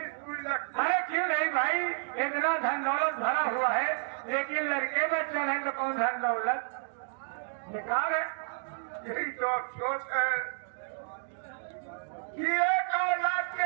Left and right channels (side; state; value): left; silent; digital silence